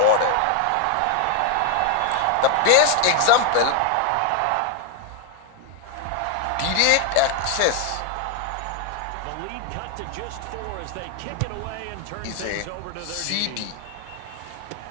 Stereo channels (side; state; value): both; different; correlation 0.00